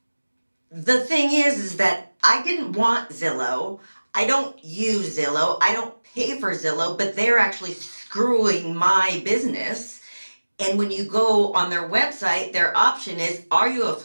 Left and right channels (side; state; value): both; inverted; correlation -1.00